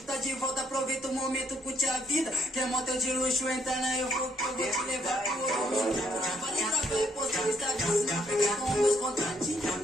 tá de volta, aproveita o momento, curte a vida. Quer motel de luxo, entra na eu vou te levar pro outro mundo. Vale pra ver, postar no Instagram, se não pegar com meus contratinhos.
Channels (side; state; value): both; normal; correlation 0.70